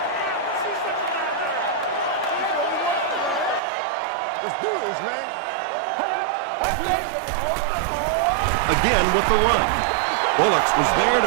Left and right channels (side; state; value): left; drops out; at 3.6 s